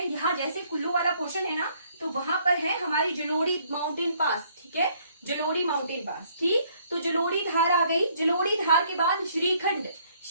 यहाँ जैसे कुल्लू वाला पोर्शन है ना, तो वहां पर है हमारी जलोड़ी माउंटेन पास। ठीक है, जलोड़ी माउंटेन पास। ठीक, तो जलोड़ी धार आ गई। जलोड़ी धार के बाद श्रीखंड।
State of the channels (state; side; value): inverted; both; correlation -0.65